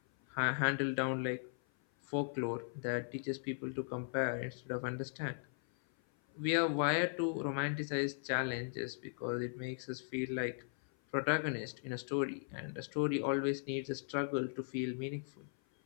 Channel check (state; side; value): silent; right; 52 dB below the other